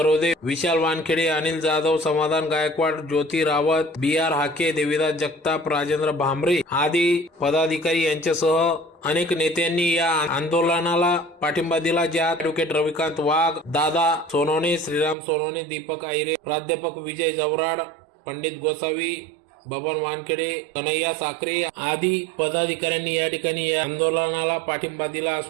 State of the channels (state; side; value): drops out; left; at 15.2 s